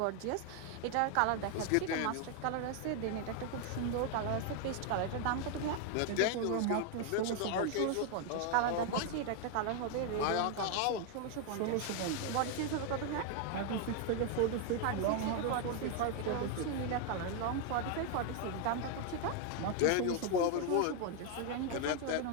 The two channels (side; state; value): both; different; correlation 0.00